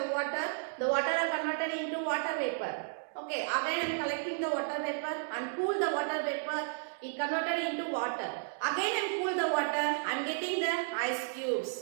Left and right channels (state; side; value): silent; left; digital silence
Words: water. The water are converted into water vapor. Okay, again I am collecting the water vapor and cool the water vapor. It converted into water. Again I am cool the water. I am getting the ice